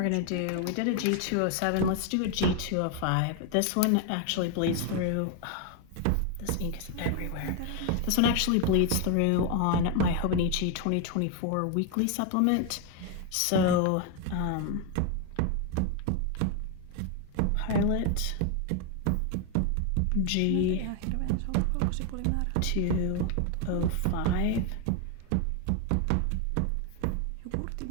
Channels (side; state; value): both; different; correlation 0.01